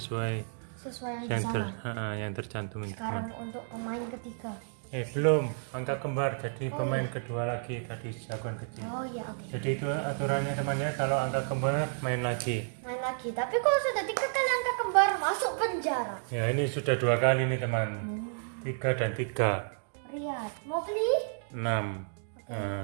sesuai yang di yang, sana. yang tercantum itu. Sekarang untuk pemain ketiga. Belum, angka kembar jadi pemain kedua lagi tadi jagoan kecil. Oh ya, oke. Jadi itu aturannya temannya, kalau angka kembar main lagi. Main lagi. Tapi kalau sudah 3 kali angka kembar masuk penjara. Ya ini sudah 2 kali nih teman. 3 dan 3. Riyad, mau beli? 6.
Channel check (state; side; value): silent; left; digital silence